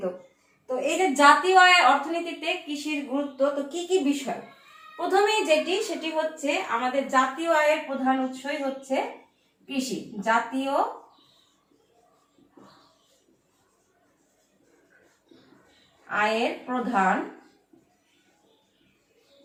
তো এই যে জাতীয় আয় অর্থনীতিতে কৃষির গুরুত্ব, তো কি কি বিষয়? প্রথমেই সেটি হচ্ছে আমাদের জাতীয় আয়ের প্রধান উৎসই হচ্ছে কৃষি। জাতীয় আয়ের প্রধান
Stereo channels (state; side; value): identical; both; correlation 1.00